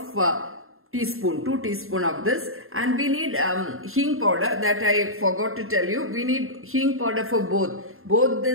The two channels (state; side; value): late; left; 0.61 ms